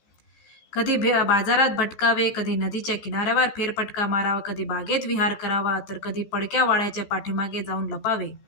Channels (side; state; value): right; late; 15 ms